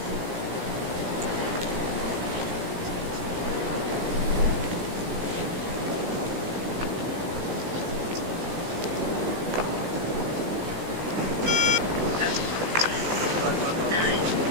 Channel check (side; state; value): left; late; 17 ms